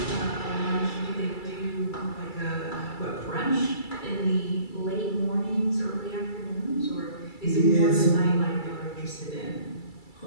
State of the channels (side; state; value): right; late; 2.3 ms